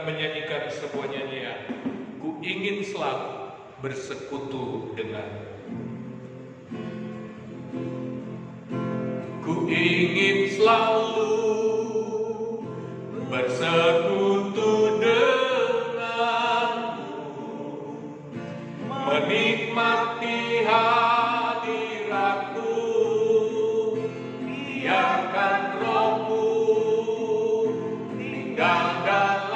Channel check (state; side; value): identical; both; correlation 1.00